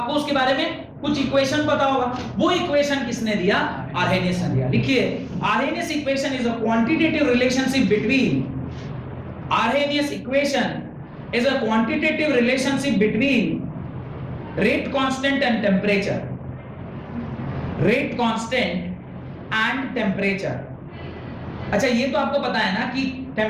उसके बारे में कुछ इक्वेशन पता होगा। वो इक्वेशन किसने दिया? आर्हेनियस ने दिया। लिखिए, Arrhenius equation is a quantitative relationship between Arrhenius equation is a quantitative relationship between rate constant and temperature. Rate constant and temperature. अच्छा, ये तो आपको पता है ना कि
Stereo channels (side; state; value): both; identical; correlation 1.00